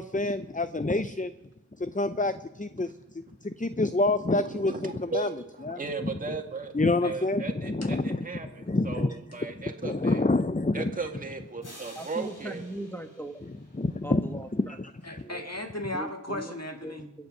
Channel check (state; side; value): normal; both; correlation 0.52